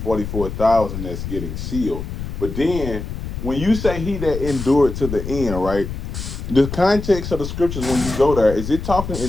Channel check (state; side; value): noise; left; rumble, 6 dB below the sound